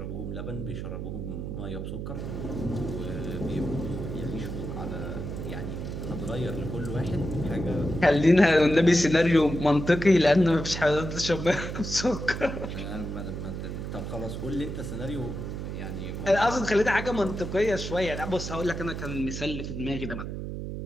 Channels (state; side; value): noise; right; hum, 6 dB below the sound